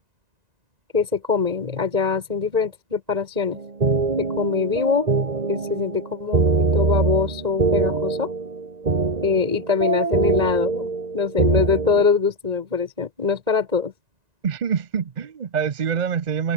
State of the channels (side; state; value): left; late; 1.9 ms